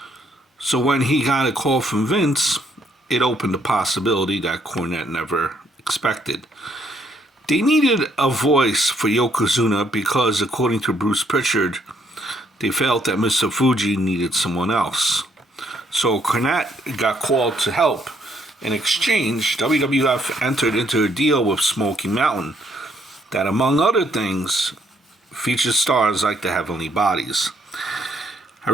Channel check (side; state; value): both; normal; correlation 0.69